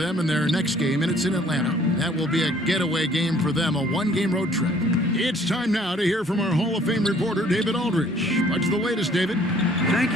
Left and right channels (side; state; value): both; normal; correlation 0.58